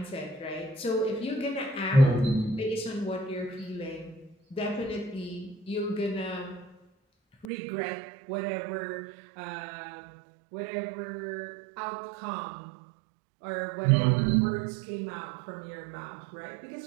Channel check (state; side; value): drops out; left; at 7.5 s